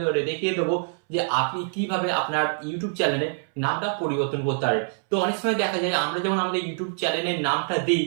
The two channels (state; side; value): silent; left; 62 dB below the other